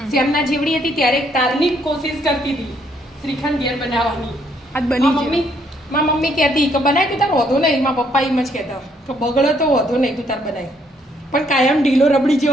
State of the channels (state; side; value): normal; both; correlation 0.69